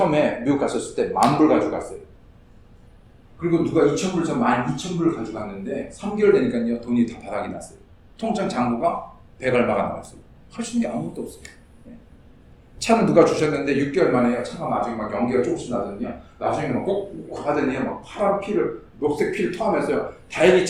미국 갔었을 때 10,000불 가지고 갔어요. 그리고 누가 2,000불, 저 12,000불을 가지고 갔는데 3개월 되니까요, 돈이 다 바닥이 났어요. 통장 잔고가 100 얼마가 나왔어요. 할 수 있는 게 아무것도 없어요. 예. 차는 누가 주셨는데 6개월 만에 차가 나중에 막 연기가 조금씩 나더니요, 나중에는 꼭 하더니 막 파란 피를, 녹색 피를 토하면서요, 다행히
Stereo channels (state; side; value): identical; both; correlation 1.00